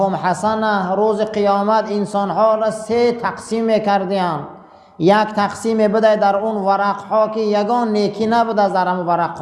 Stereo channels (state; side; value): identical; both; correlation 1.00